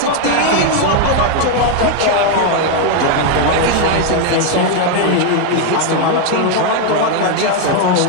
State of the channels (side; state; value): both; different; correlation 0.01